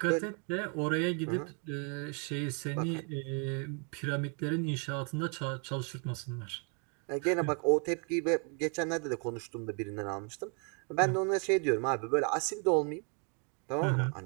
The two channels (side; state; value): left; quieter; 37.4 dB